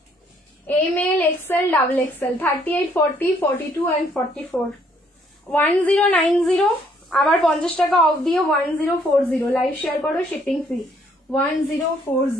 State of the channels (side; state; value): both; normal; correlation 0.66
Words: ML, XL, double XL, 38, 40, 42 and 44, 1090, আবার 50 টাকা অফ দিয়ে 1040, লাইভ শেয়ার করো, শিপিং ফ্রি,